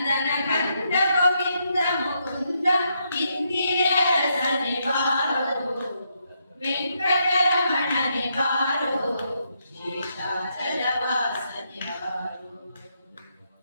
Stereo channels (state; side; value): inverted; both; correlation -0.79